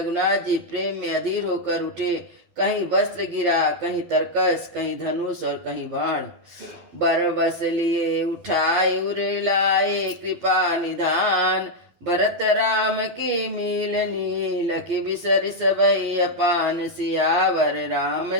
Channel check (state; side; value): late; left; 12 ms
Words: जी प्रेम में अधीर होकर उठे। कहीं वस्त्र गिरा, कहीं तरकस, कहीं धनुष और कहीं बाण। बरबस लिए उठाए उरे लाए, कृपा निधान। भरत राम की मिलनी, लखि बिसरि सबई अपान। सियावर